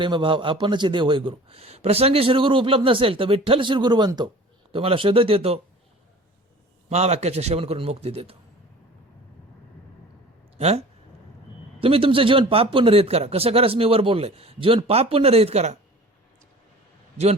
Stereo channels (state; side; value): normal; both; correlation 0.43